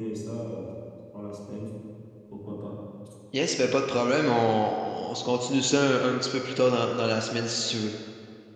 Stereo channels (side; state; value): both; identical; correlation 1.00